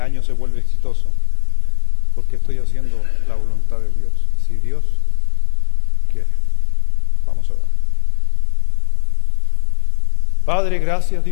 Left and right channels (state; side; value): silent; right; 58 dB below the other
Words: año se vuelve exitoso? Porque estoy haciendo la voluntad de Dios. Si Dios quiere. Vamos a orar. Padre, gracias